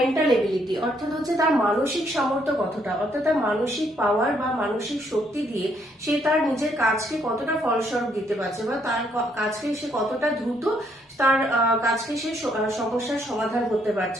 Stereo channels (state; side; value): normal; both; correlation 0.71